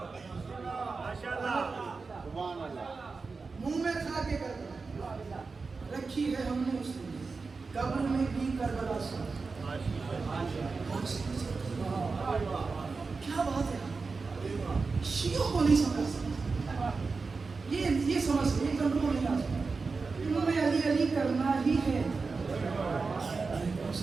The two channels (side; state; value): left; quieter; 4.4 dB